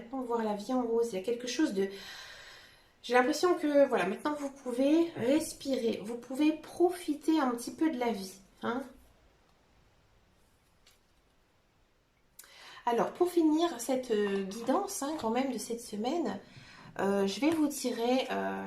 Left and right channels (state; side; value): identical; both; correlation 1.00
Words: voir la vie en rose. Il y a quelque chose de... J'ai l'impression que, voilà, maintenant, vous pouvez respirer. Vous pouvez profiter un petit peu de la vie. Hein. Alors, pour finir cette guidance, hein, quand même, de cette semaine, je vais vous tirer...